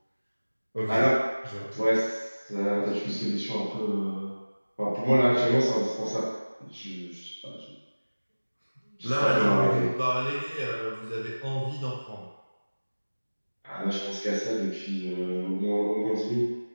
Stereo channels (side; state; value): both; inverted; correlation -1.00